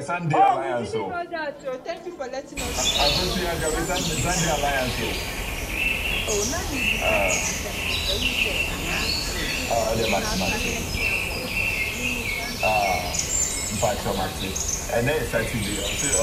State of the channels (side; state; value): both; identical; correlation 1.00